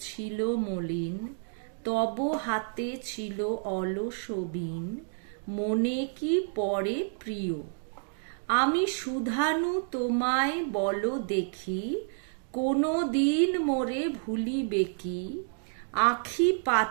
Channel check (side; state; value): left; silent; digital silence